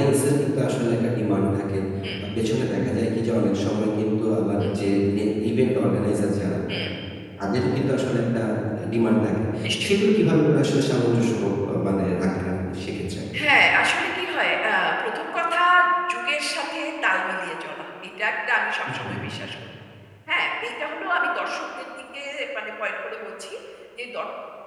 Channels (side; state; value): both; identical; correlation 1.00